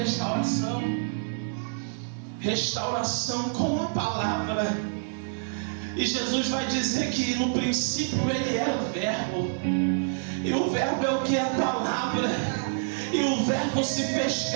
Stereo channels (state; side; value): silent; left; digital silence